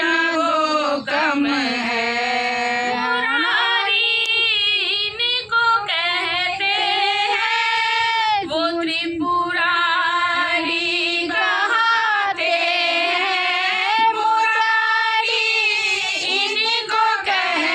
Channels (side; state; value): both; identical; correlation 1.00